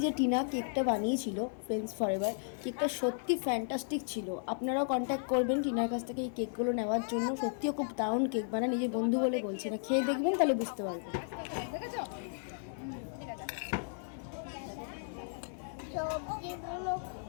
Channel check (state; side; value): silent; right; 55 dB below the other